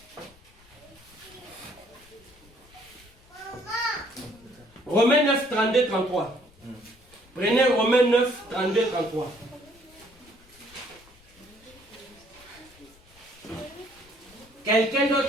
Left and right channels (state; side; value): noise; left; rumble, 27 dB below the sound